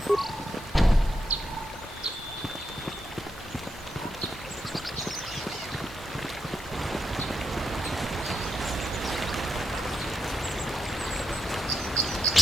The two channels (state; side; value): normal; both; correlation 0.84